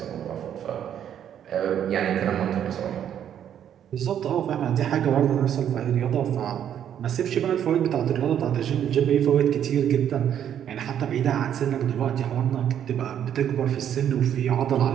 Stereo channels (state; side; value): quieter; left; 9.7 dB